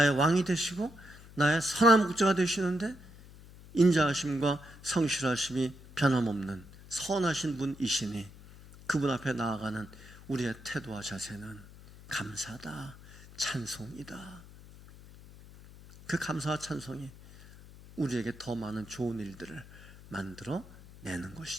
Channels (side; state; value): left; noise; hum, 19 dB below the sound